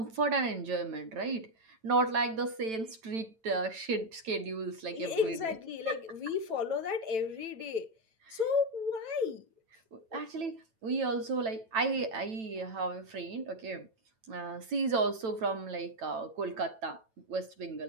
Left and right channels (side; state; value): left; late; 9.0 ms